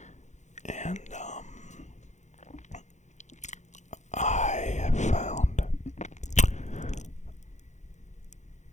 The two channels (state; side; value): late; right; 0.34 ms